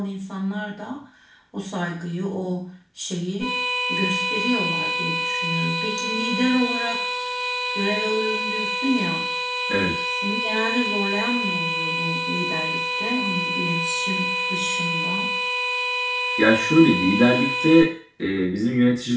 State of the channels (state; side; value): identical; both; correlation 1.00